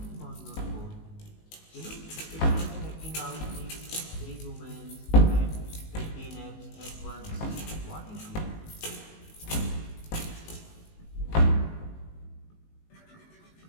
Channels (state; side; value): late; right; 19 ms